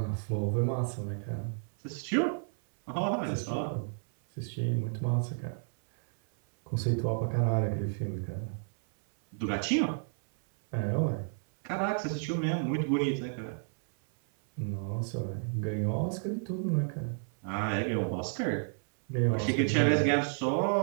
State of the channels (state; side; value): silent; left; 57 dB below the other